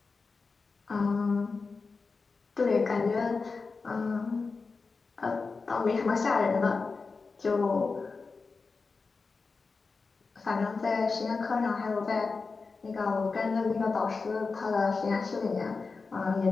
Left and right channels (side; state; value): right; quieter; 4.4 dB